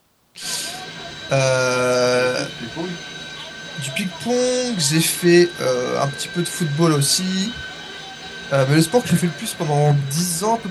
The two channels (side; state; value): both; identical; correlation 1.00